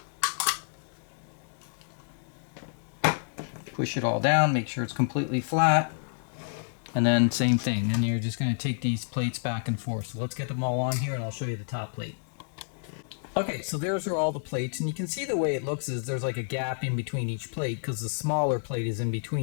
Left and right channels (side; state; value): right; silent; digital silence